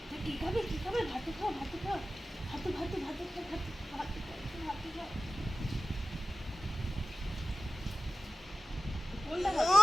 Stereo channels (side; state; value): both; normal; correlation 0.95